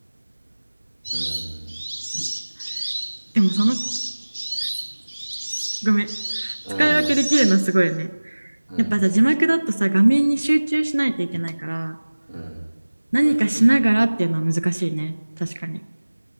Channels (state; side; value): inverted; both; correlation -1.00